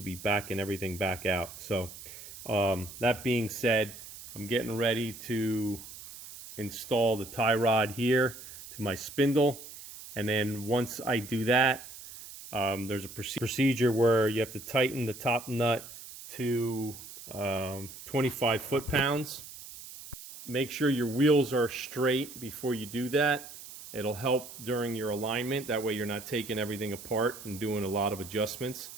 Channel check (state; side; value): noise; right; hiss, 14 dB below the sound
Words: be backing everything back out. So that being said, I'm getting ready to install the tie rod here to my spindle, and then once I do that, there's a procedure where you have to tighten the top nut to 25 foot-pounds. Make sure your wheels are straight before you do that. It'll help during your alignment. That way you're not taking everything apart and doing a lot of adjustments.